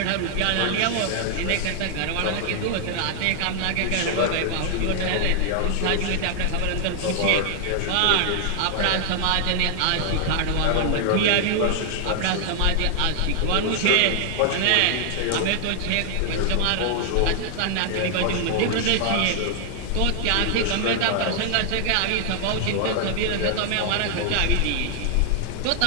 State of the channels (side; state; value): both; different; correlation 0.00